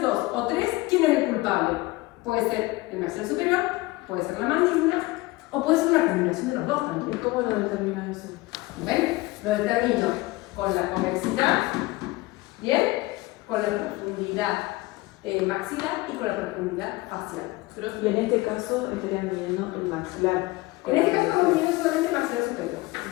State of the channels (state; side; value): quieter; right; 20.7 dB